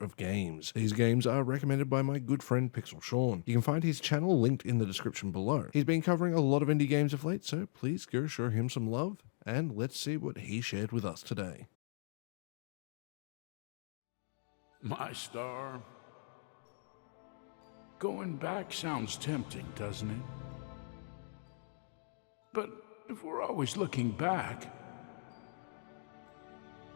games. These games are recommended by my good friend Pixelshaun. You can find his channel linked in the description below. He's been covering a lot of indie games of late, so please go show him some love, and let's see what he shared with us today. My star. Going back sounds tempting, doesn't it? But if we're always looking back,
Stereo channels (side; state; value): right; silent; digital silence